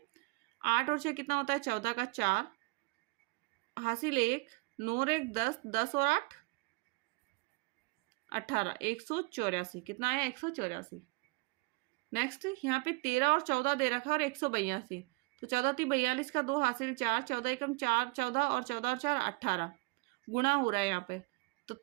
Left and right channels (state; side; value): quieter; left; 27.7 dB